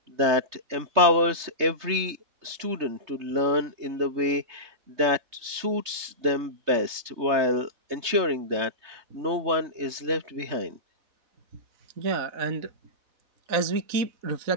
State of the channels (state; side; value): late; left; 3.3 ms